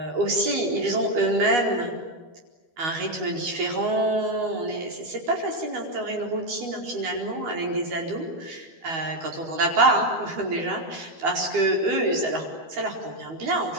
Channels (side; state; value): left; late; 12 ms